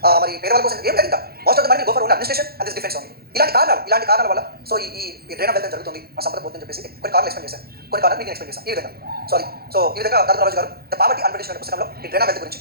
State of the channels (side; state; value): left; late; 0.45 ms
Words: మరి పేదవాళ్ళ కోసం ఏం లేదు. ఇంకా most of the money go for only administration and this defence only. ఇలాంటి కారణాల వల్ల సో ఈ డ్రైన్ ఆఫ్ వెల్త్ జరుగుతుంది, మన సంపద పోతుందని చెప్పేసి కొన్ని కారణాలు ఎక్స్ప్లెయిన్ చేశాను. కొన్ని కారణాలు మీకు ఎక్స్ప్లెయిన్ చేశాను ఈ విధంగా. సో ఈ విధంగా దాదాపు రాజు గారు ద పావర్టీ అండ్ బ్రిటిష్ పుస్తకంలో ఈ డ్రైన్ ఆఫ్ వెల్త్ గురించి